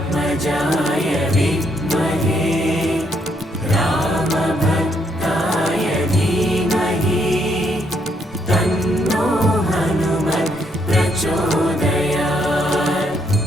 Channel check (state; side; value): normal; both; correlation 0.74